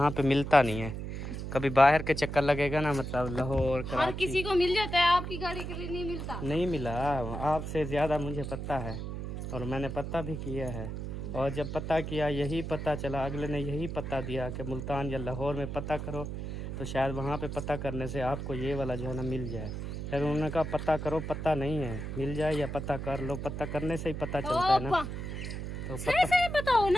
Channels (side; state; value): right; noise; hum, 6 dB below the sound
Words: पे मिलता नहीं है। कभी बाहर के चक्कर लगेगा ना, मतलब लाहौर, हर किसी को मिल जाता है, आपकी गाड़ी के लिए नहीं मिलता। नहीं मिला, आपसे ज़्यादा मुझे पता है और मैंने पता भी किया है। और जब पता किया यही पता चला, अगले ने यही पता दिया कि मुल्तान या लाहौर में पता करो, तो शायद वहाँ पे पता करने से आपको ये वाला जो है ना मिल जाए। फिर उन्होंने कहा पता करो, पता नहीं है, मिल जाए या पता कर लो, पता करने से ही पता चलता है ना। तो सही बताओ